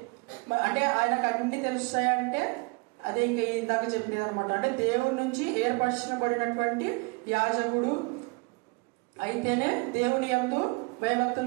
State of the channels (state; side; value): quieter; left; 29.5 dB